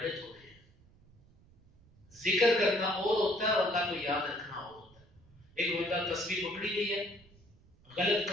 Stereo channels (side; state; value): right; noise; rumble, 28 dB below the sound